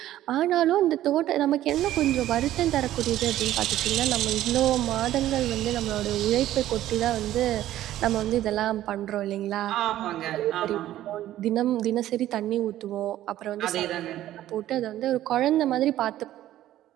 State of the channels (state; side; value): quieter; left; 13.4 dB